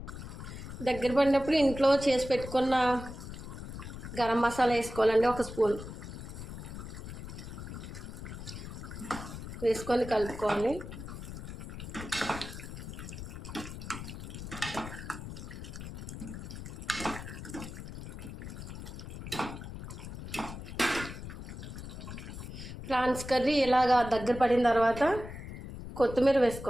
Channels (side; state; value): left; noise; rumble, 9 dB below the sound